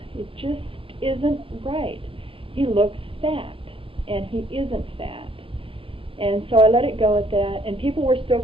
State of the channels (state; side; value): late; left; 0.26 ms